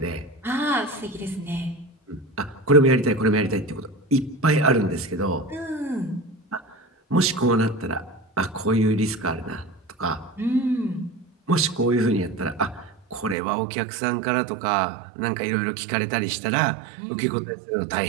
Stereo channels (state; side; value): drops out; left; at 13.4 s